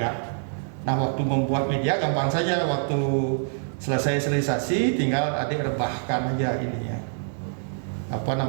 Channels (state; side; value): silent; left; 61 dB below the other